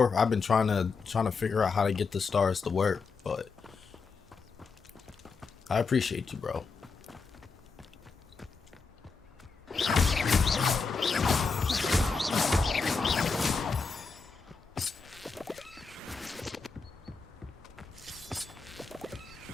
I've been trying to figure out how to get the stars to work, but I appreciate you, bro.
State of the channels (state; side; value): quieter; right; 4.7 dB